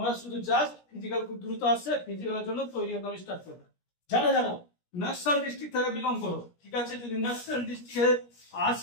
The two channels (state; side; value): late; right; 17 ms